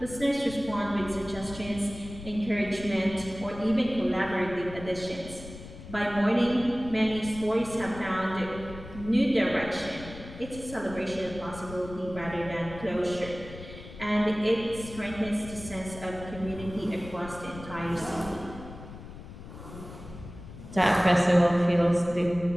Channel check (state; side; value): noise; left; rumble, 14 dB below the sound